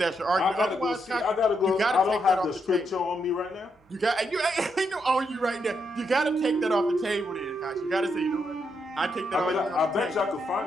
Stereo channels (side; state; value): both; normal; correlation 0.80